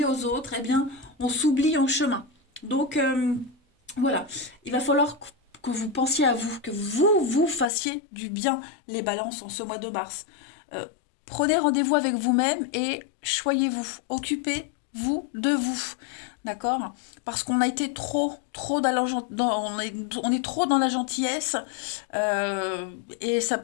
aux autres, eh bien, on s'oublie en chemin. Donc, voilà, il va falloir que vous pensiez à vous, que vous fassiez du bien, les balances, en ce mois de mars. Prenez rendez-vous avec vous-même et choyez-vous, occupez-vous de vous. D'accord? Parce qu'on a été trop on est trop dans la gentillesse et ça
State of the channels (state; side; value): drops out; right; at 7.7 s